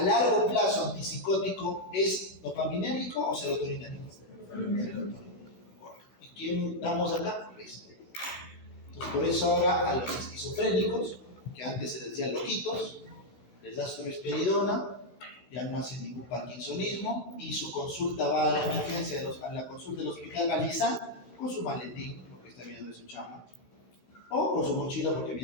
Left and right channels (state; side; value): late; right; 16 ms